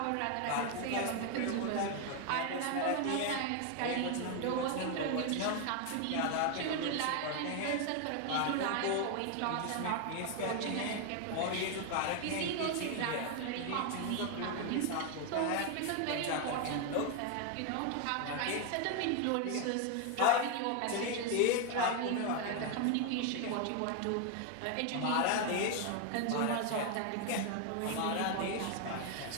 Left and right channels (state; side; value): different; both; correlation 0.01